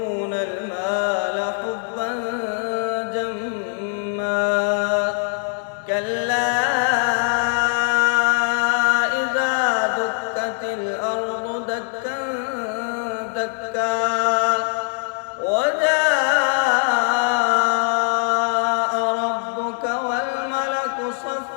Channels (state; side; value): silent; right; 60 dB below the other